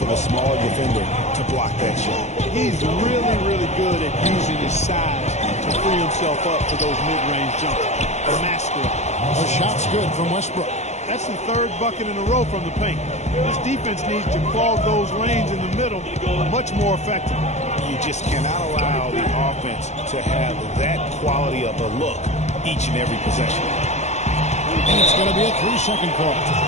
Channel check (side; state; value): right; late; 0.33 ms